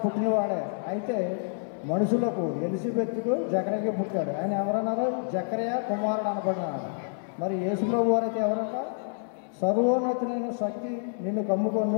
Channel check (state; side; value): silent; right; 59 dB below the other